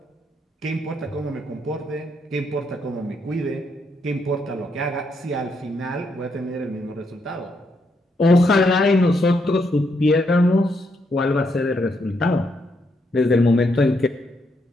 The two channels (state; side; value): normal; both; correlation 0.77